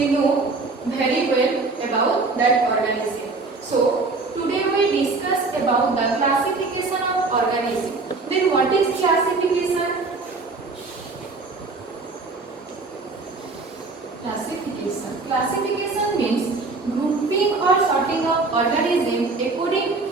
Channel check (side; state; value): left; quieter; 3.8 dB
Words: know very well about that organism. So today we discuss about the classification of organism. Then what is classification? Classification means grouping or sorting of organisms according